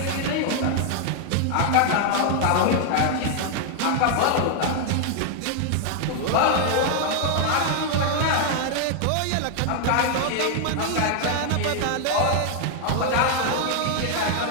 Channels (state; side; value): different; both; correlation 0.00